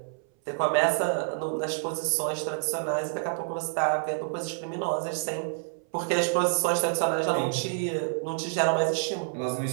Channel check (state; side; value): silent; left; 59 dB below the other